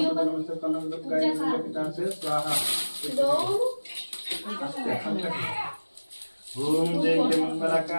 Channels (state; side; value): inverted; both; correlation -1.00